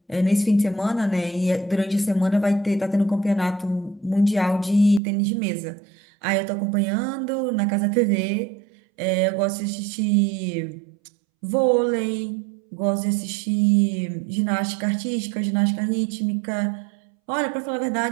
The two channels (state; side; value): drops out; left; at 5.0 s